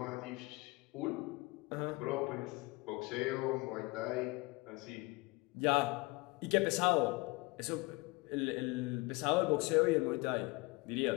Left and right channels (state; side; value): quieter; right; 24.3 dB